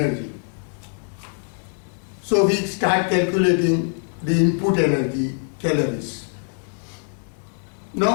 So we start calculating the input energy, calories.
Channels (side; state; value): right; silent; 59 dB below the other